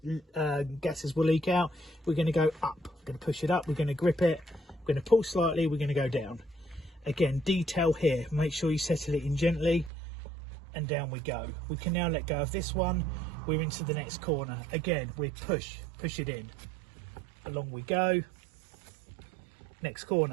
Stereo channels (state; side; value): drops out; left; at 9.9 s